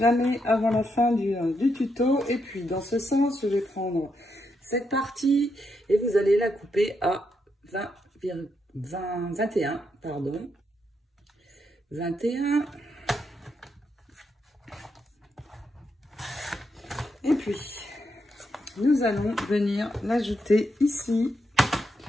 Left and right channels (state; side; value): normal; both; correlation 0.81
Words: avant la fin du tuto. Et puis, dans ce sens, je vais prendre cette partie et vous allez la couper à 21, pardon. 21. Et puis, nous allons venir l'ajouter ici.